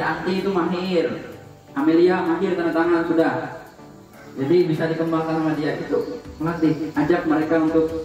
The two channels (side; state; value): both; identical; correlation 1.00